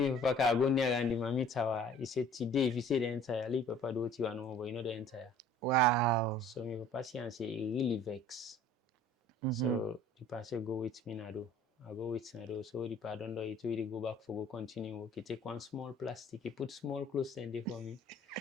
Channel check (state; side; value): normal; both; correlation 0.50